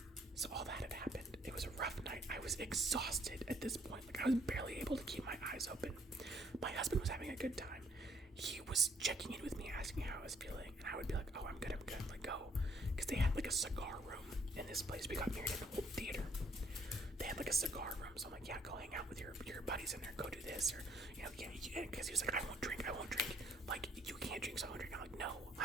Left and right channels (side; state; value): both; normal; correlation 0.65